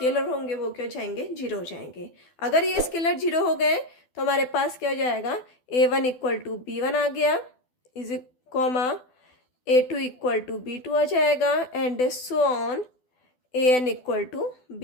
होंगे वो क्या हो जाएंगे, 0 हो जाएंगे। अगर ये स्केलर 0 हो गए तो हमारे पास क्या हो जाएगा, a1 इक्वल टू b1 आ गया, is comma a2 equal to b2 आ जाएगा and so on an equal to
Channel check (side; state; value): right; late; 12 ms